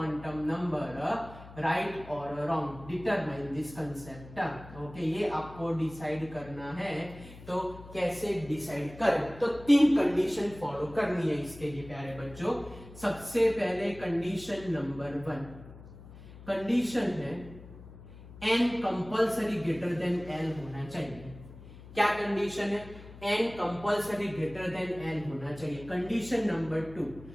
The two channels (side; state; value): left; noise; hum, 17 dB below the sound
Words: number right or wrong, determine this concept। okay, ये आपको decide करना है। तो कैसे decide करें? तो 3 condition follow करनी है इसके लिए प्यारे बच्चों। सबसे पहले कंडीशन नंबर 1, कंडीशन है n compulsory greater than l होना चाहिए। क्या कंडीशन है? n compulsory greater than l होना चाहिए। Condition number 2,